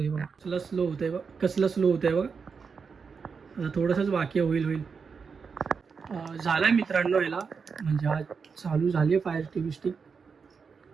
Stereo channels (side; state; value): left; quieter; 5.6 dB